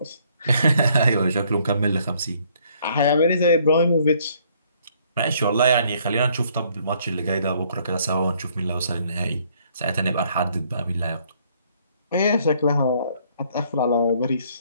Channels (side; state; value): both; inverted; correlation -0.65